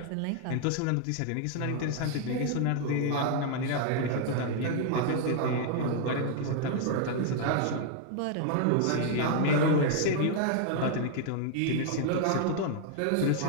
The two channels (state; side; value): different; both; correlation 0.00